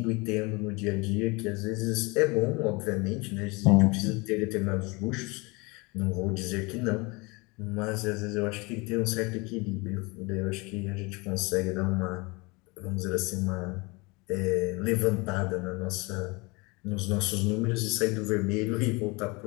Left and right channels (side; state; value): right; quieter; 26.6 dB